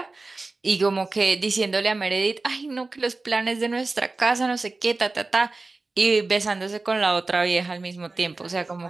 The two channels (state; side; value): quieter; left; 3.5 dB